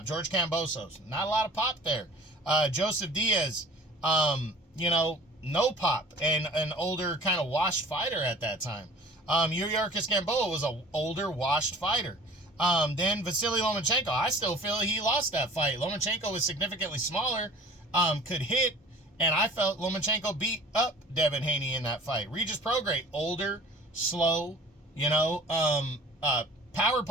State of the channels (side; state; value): both; normal; correlation 0.45